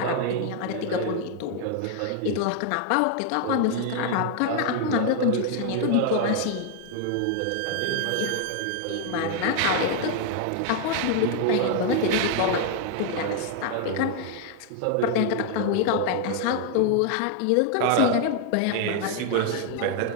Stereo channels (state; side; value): different; both; correlation 0.00